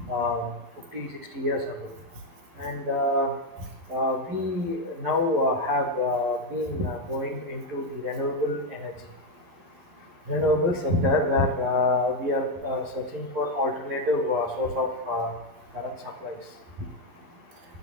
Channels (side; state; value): left; late; 12 ms